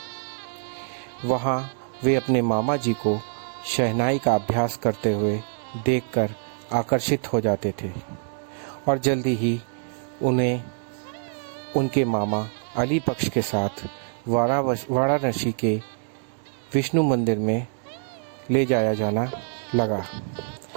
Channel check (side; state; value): left; silent; digital silence